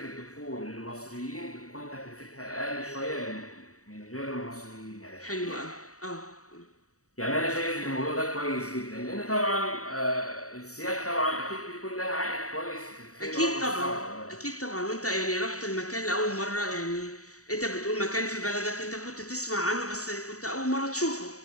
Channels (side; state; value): right; late; 0.65 ms